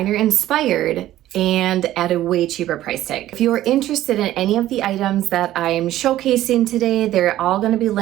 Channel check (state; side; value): quieter; left; 13.9 dB